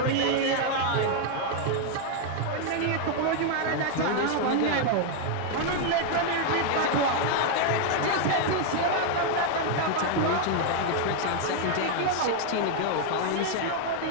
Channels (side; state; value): both; different; correlation 0.00